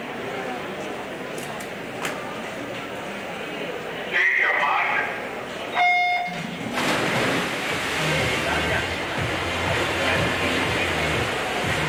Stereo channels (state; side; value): identical; both; correlation 1.00